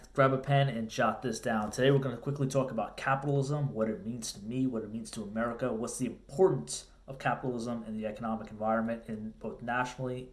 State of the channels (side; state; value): both; identical; correlation 1.00